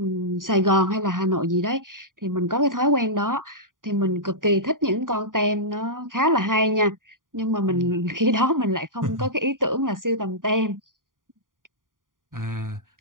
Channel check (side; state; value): left; late; 0.89 ms